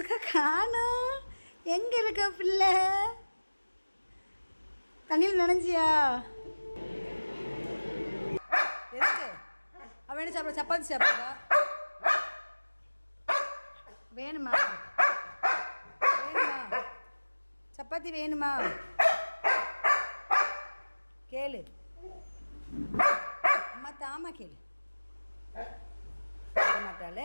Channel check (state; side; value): inverted; both; correlation -1.00